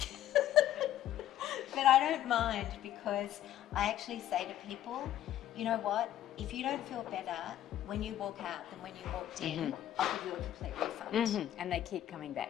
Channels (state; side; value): quieter; right; 12.2 dB